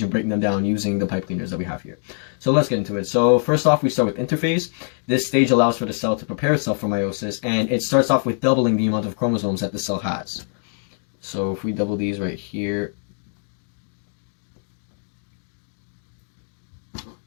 and breaking them down using the pipe cleaners that we have here. So let's get into it. So first off, we start with interphase. This stage allows for the cell to prepare itself for meiosis, and it starts off with doubling the amount of chromosomes that the cell has. So if we double these right here,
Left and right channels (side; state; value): right; silent; 63 dB below the other